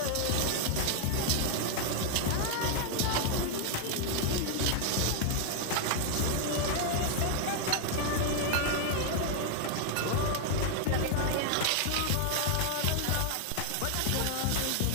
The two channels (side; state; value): both; different; correlation 0.00